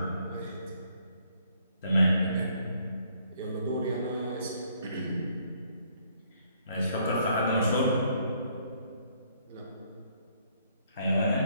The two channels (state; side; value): inverted; both; correlation -0.67